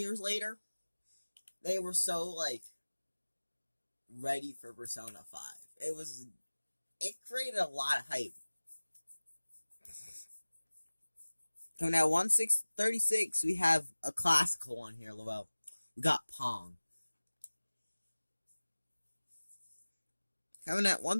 later, they were so ready for Persona 5. It created a lot of hype. Coming at 136, we have a classical one here, Lavelle. We got Pong. Coming at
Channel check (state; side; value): inverted; both; correlation -1.00